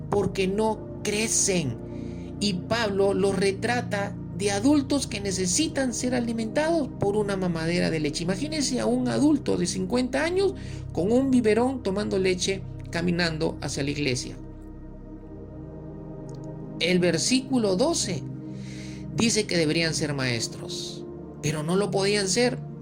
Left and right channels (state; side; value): identical; both; correlation 1.00